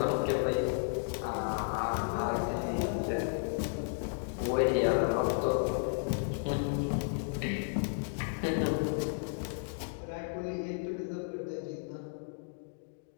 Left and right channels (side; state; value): right; silent; digital silence